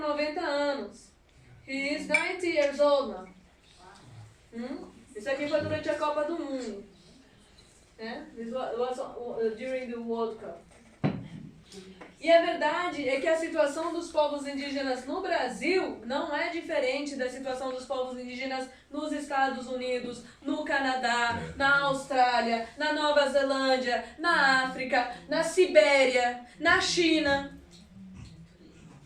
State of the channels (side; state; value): both; identical; correlation 1.00